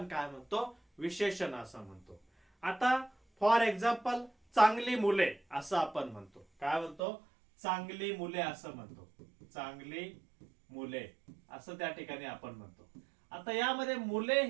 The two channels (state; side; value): drops out; left; at 7.0 s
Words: काय म्हणतो, विशेषण असं म्हणतो. आता फॉर एक्झाम्पल चांगली मुले असं आपण म्हणतो. काय म्हणतो? चांगली मुले असं म्हणतो. चांगली मुले असं त्या ठिकाणी आपण म्हणतो. आता यामध्ये मुले